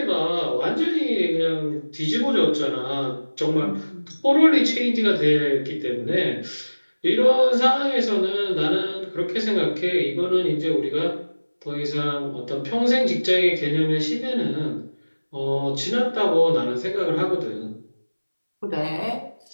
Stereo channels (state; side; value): inverted; both; correlation -1.00